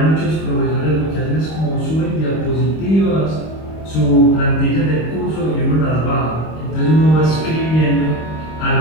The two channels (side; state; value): right; late; 26 ms